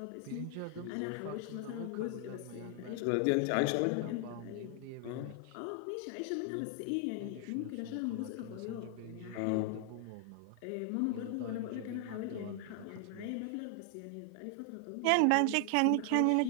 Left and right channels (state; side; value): different; both; correlation 0.00